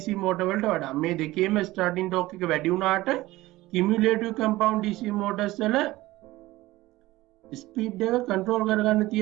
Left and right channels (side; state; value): left; quieter; 18.1 dB